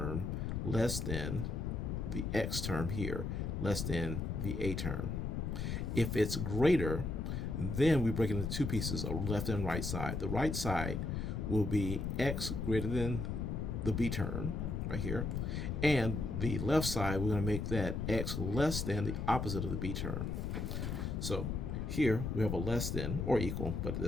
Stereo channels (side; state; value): left; noise; rumble, 2 dB below the sound